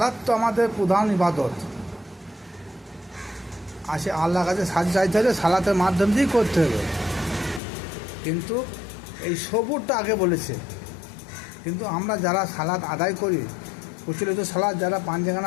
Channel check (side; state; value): right; drops out; at 7.6 s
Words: তো আমাদের প্রধান ইবাদত, আসে আল্লাহর কাছে সাহায্য চাইতে হলে সালাতের মাধ্যম দিয়েই করতে হবে। কিন্তু এই সবুরটা আগে বলেছে। কিন্তু আমরা যারা সালাত আদায় করি, প্রচলিত সালাত যারা